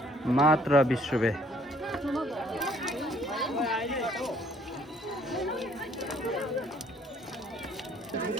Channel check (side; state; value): both; normal; correlation 0.61